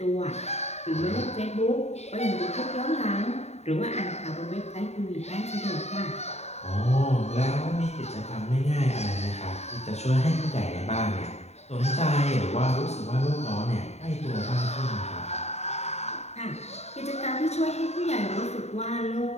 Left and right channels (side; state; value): right; late; 0.32 ms